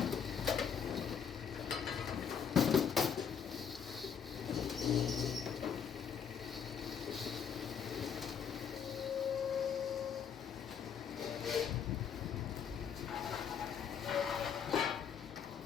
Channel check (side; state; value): right; quieter; 7.5 dB